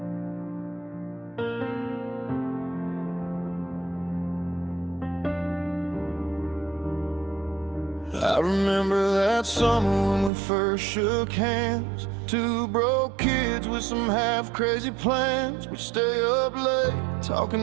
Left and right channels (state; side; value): drops out; left; at 10.3 s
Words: I remember that summer when we first shook hands. Two broke kids with some half-crazy plans. We'd stay up late,